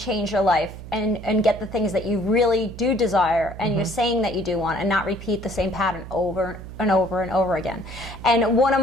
your life, and get the things that you really do desire, and you're saying that you do want, and not repeat the same pattern over and over and over again. And one of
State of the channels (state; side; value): noise; right; hum, 13 dB below the sound